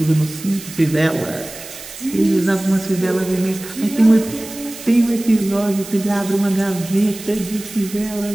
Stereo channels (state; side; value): noise; right; hiss, 14 dB below the sound